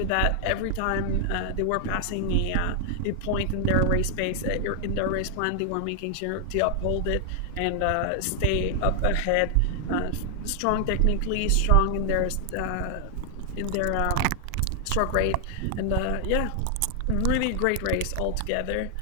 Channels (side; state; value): both; different; correlation 0.00